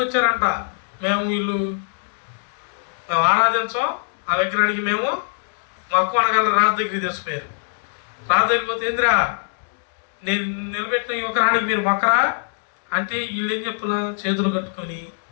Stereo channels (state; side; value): silent; right; digital silence